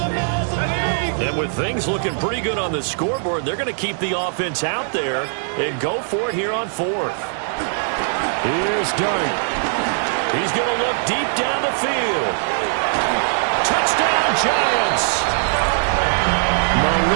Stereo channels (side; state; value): left; silent; digital silence